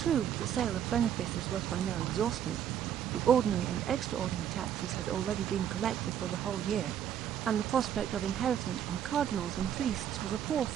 the sale of benefices was by now exhausted, the ordinary and extraordinary taxes had already been collected for the whole year, and the prospect of inheritance from cardinals and priests was a poor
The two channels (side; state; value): left; quieter; 9.6 dB